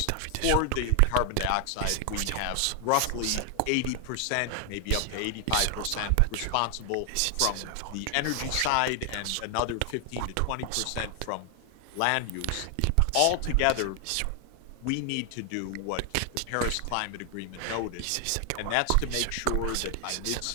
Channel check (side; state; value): both; different; correlation 0.00